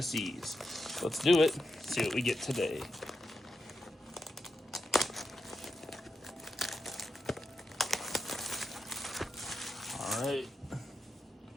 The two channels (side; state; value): both; normal; correlation 0.85